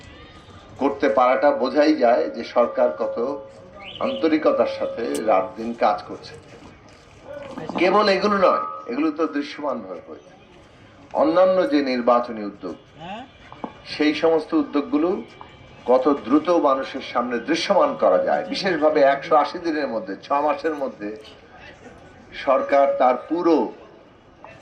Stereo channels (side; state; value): both; identical; correlation 1.00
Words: করতে পারাটা বোঝাই যায় যে সরকার কত আন্তরিকতার সাথে রাত দিন কাজ করছে। কেবল এগুলো নয়, এগুলো তো দৃশ্যমান ভাবে হয়েছে। অন্যান্য যে নির্বাচনী উদ্যোগ, সেই সমস্ত উদ্যোগগুলো কত দ্রুত মানুষের সামনে দৃশ্যমান করা যায়। বিশেষভাবে 180 দিনের মধ্যে, 6 মাসের মধ্যে সরকার তার পুরো